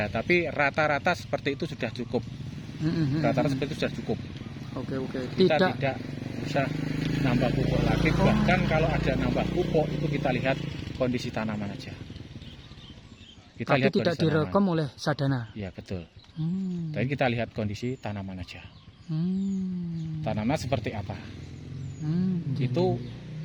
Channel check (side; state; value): both; identical; correlation 1.00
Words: tapi rata-rata seperti itu sudah cukup. Rata-rata seperti itu sudah cukup. Oke. Kita Tidak. tidak bisa nambah pupuk lagi. Bahkan kalau ada nambah pupuk itu kita lihat kondisi tanaman aja. Kita Tapi lihat tidak kondisi direkom tanaman. oleh sadana. Ya betul. Hmm. Tapi kita lihat kondisi tanaman aja. Tanaman seperti apa? Itu